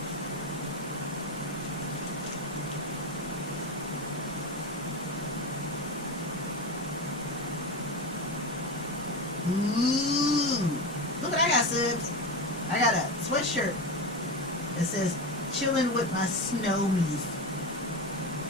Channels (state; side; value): normal; both; correlation 0.20